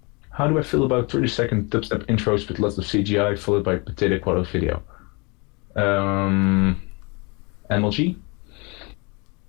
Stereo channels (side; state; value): right; quieter; 29.4 dB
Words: How do I feel about 30-second dubstep intros with lots of CGI followed by potato quality video? MLG?